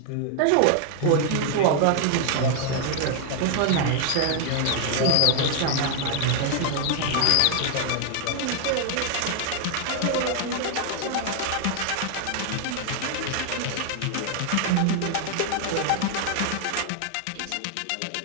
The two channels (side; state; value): both; different; correlation 0.00